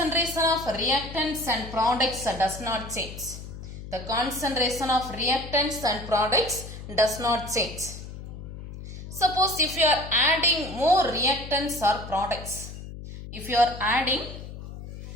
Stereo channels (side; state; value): left; noise; hum, 11 dB below the sound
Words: of reactants and products does not change. The concentration of reactants and products does not change. Suppose if you are adding more reactants or products,